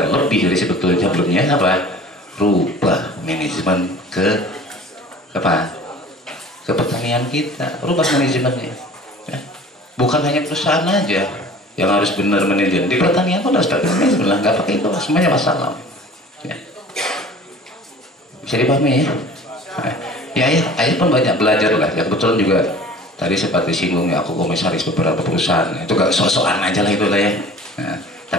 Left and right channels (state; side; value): normal; both; correlation 0.45